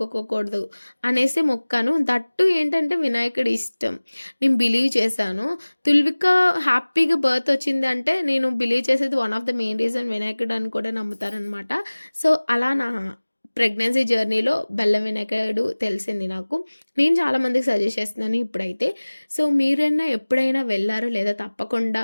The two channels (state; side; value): inverted; both; correlation -1.00